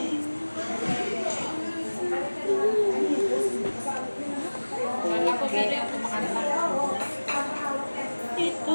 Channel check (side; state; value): both; inverted; correlation -1.00